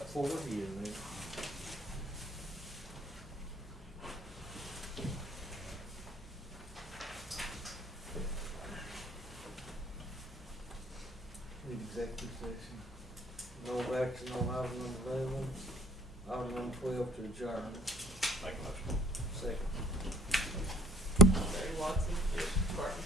forward you, man. Need executive session. No action on item number 11, item number 12 to adjourn. Make a motion. Second. Barry Watson. Yes. Barton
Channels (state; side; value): normal; both; correlation 0.53